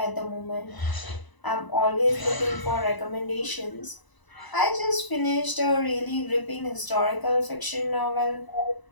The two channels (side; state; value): right; late; 1.0 ms